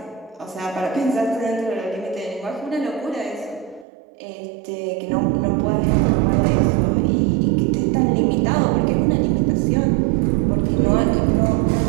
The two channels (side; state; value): left; drops out; at 3.9 s